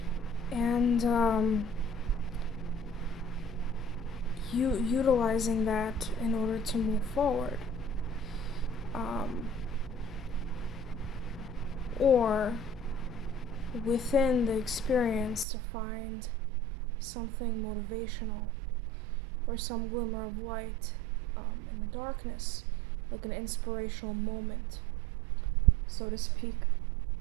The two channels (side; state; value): left; drops out; at 15.5 s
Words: And utilizing that in order to move forward. Or within the experience to find something motivational or some glimmer of light in the darkness, like an inspirational moment, so to speak.